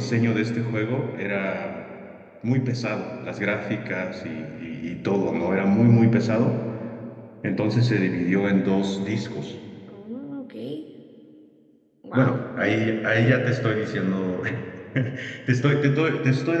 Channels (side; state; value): both; identical; correlation 1.00